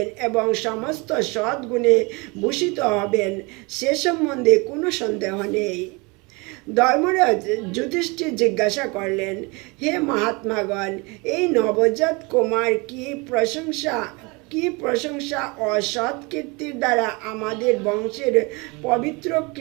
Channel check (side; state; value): left; quieter; 27.6 dB